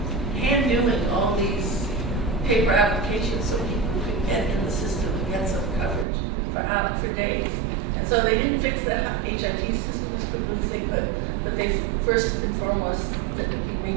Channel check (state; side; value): drops out; left; at 6.1 s